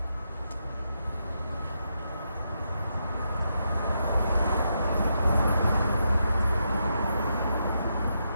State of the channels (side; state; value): both; inverted; correlation -0.82